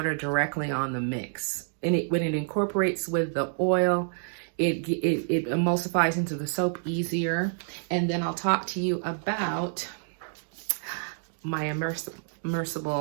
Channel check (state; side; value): silent; left; digital silence